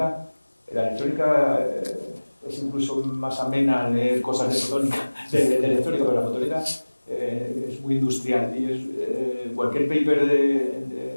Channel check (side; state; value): both; inverted; correlation -1.00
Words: la electrónica es incluso más amena leer cosas de fotónica, de electrónica, pero la fotónica es muy industrial y cualquier paper de